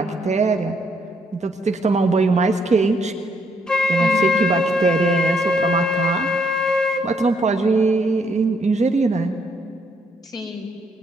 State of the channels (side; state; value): both; normal; correlation 0.72